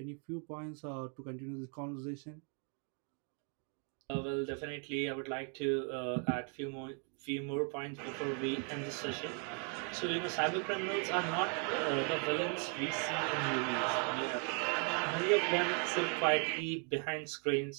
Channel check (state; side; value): quieter; left; 37.4 dB